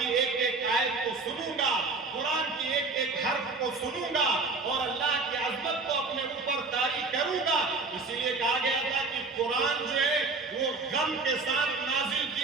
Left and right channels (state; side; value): quieter; left; 3.9 dB